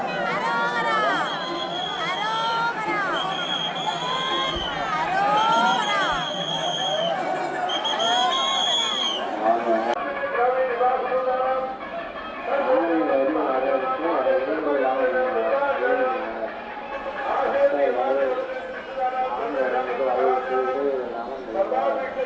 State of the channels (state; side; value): identical; both; correlation 1.00